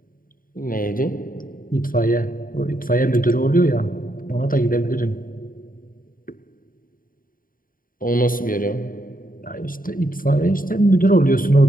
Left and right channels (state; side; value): late; right; 0.41 ms